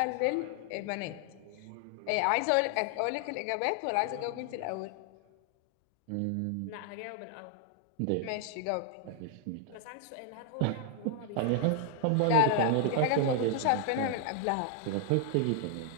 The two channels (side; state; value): both; different; correlation 0.00